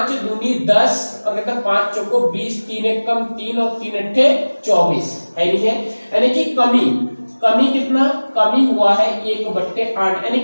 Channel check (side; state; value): both; inverted; correlation -1.00